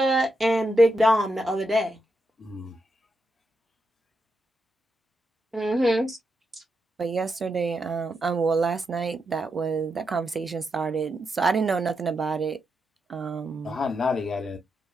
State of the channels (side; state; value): both; normal; correlation 0.84